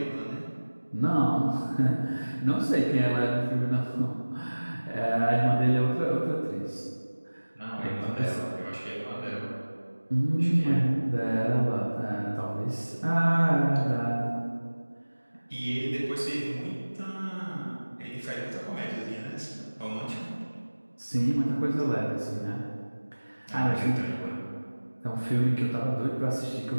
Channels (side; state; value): both; inverted; correlation -1.00